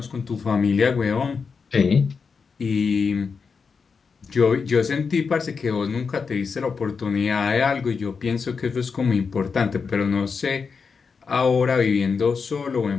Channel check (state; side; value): quieter; right; 5.4 dB